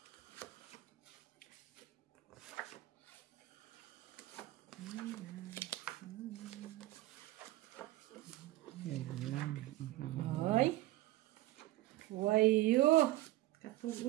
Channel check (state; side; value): quieter; left; 17.1 dB